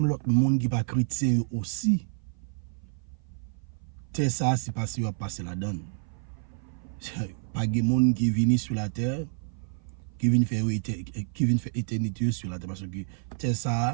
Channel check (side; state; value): left; silent; 55 dB below the other